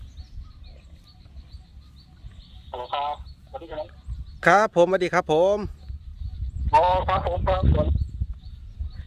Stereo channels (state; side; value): identical; both; correlation 1.00